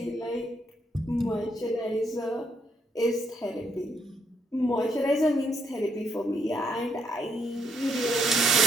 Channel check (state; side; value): normal; both; correlation 0.75